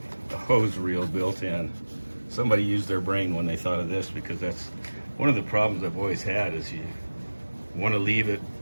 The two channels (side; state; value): both; inverted; correlation -1.00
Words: the hose reel built in. Somebody used their brain when they thought of this, because that's one of the problems I've always had, is you want to leave it